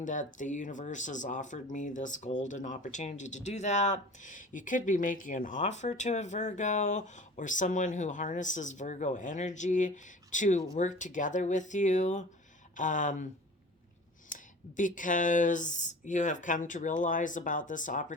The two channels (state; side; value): normal; both; correlation 0.41